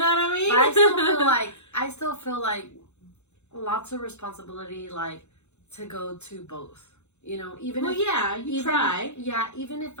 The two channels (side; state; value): right; late; 0.82 ms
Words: what I mean? But I still feel like lots of responsibility, like, to go to both. You know, even try. Yeah, even if